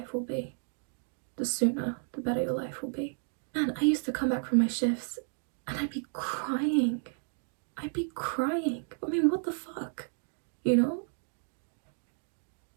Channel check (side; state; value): left; silent; 56 dB below the other